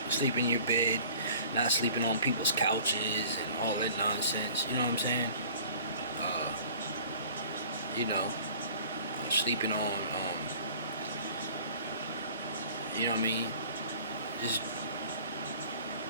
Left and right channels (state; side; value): inverted; both; correlation -0.48